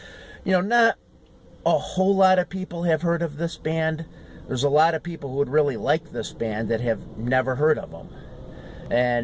not a whole lot of people have heard of this band. There's a lot of people who would really like this band that have never heard of them.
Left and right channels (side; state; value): both; identical; correlation 1.00